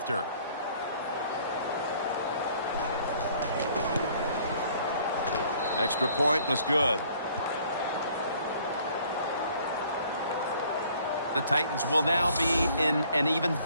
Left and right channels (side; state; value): both; inverted; correlation -0.58